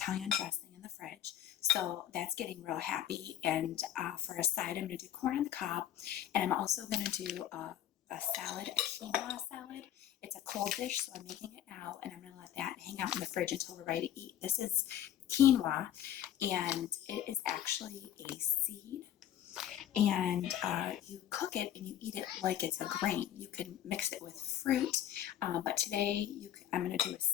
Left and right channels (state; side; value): quieter; right; 11.3 dB